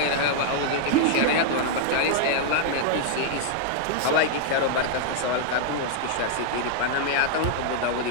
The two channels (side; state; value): both; different; correlation 0.00